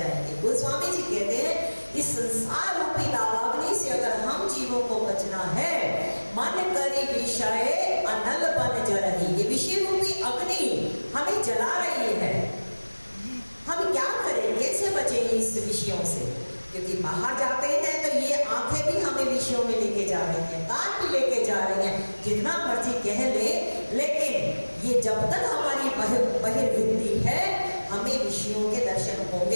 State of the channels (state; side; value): inverted; both; correlation -1.00